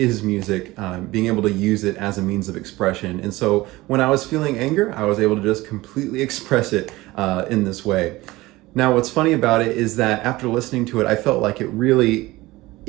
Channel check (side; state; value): left; quieter; 19.4 dB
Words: music, being able to use it as a means of expression. And so when I was feeling anger, I was able to just completely express it in this way. Now, what's funny about it is that after listening to it, I felt like